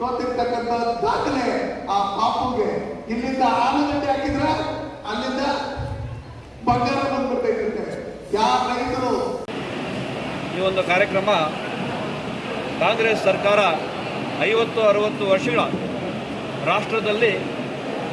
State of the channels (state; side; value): identical; both; correlation 1.00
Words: ಸೋತಿರ್ತಕ್ಕಂಥ ದಾಖಲೆ ಆ ಪಾಪುಗೆ. ಇಲ್ಲಿಂದ ಆಲೂಗಡ್ಡೆ ಹಾಕಿದ್ರೆ ಅಲ್ಲಿಂದ ಬಂಗಾರ ಬಂದ್ಬಿಟ್ಟೈತೆ. ಯಾವ ರೈತರು ಈ ಒಂದು ಕಾರ್ಯಕ್ರಮ ಕಾಂಗ್ರೆಸ್ ಸರ್ಕಾರ 50-60 ವರ್ಷಗಳ ರಾಷ್ಟ್ರದಲ್ಲಿ